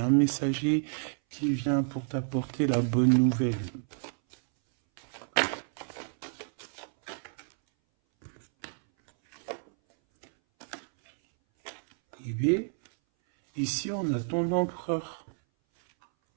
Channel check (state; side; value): silent; left; 58 dB below the other